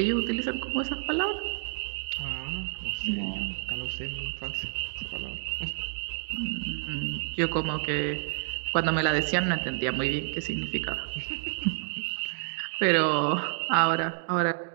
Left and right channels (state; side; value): silent; left; digital silence